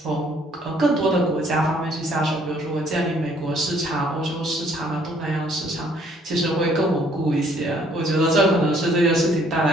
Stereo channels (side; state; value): both; normal; correlation 0.63